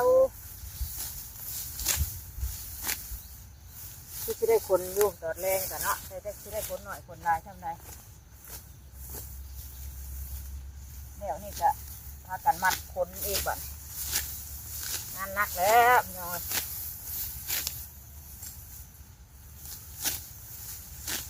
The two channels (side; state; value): both; identical; correlation 1.00